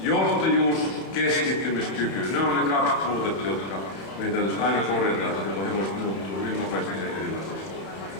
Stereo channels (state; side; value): late; right; 31 ms